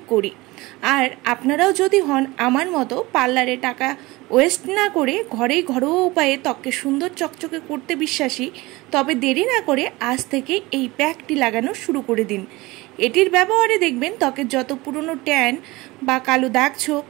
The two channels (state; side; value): quieter; left; 21.4 dB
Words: করি। আর আপনারাও যদি হন আমার মতো পার্লারে টাকা ওয়েস্ট না করে ঘরেই ঘরোয়া উপায়ে ত্বককে সুন্দর চকচকে করতে বিশ্বাসী, তবে দেরি না করে আজ থেকে এই প্যাকটি লাগানো শুরু করে দিন। এটির ব্যবহারে দেখবেন ত্বকের যত পুরনো ট্যান বা কালো দাগ ছোপ,